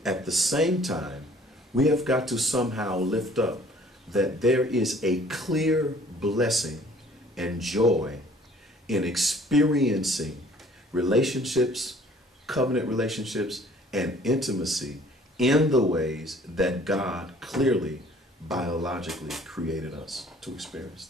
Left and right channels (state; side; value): normal; both; correlation 0.55